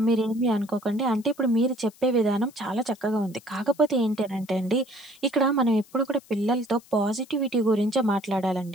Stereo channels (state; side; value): noise; left; hiss, 26 dB below the sound